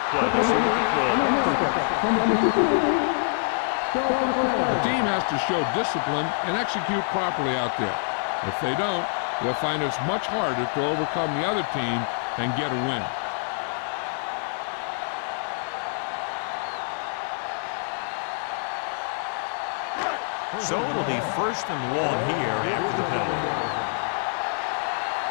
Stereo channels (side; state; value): right; silent; digital silence